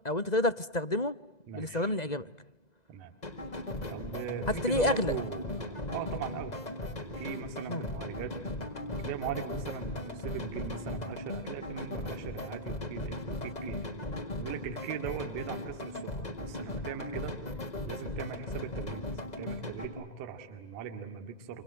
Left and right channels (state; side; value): late; right; 2.0 ms